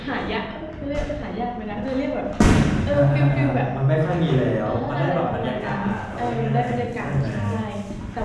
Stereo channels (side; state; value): both; identical; correlation 1.00